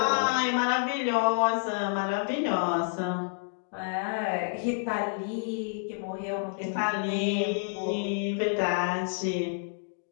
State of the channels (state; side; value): silent; right; digital silence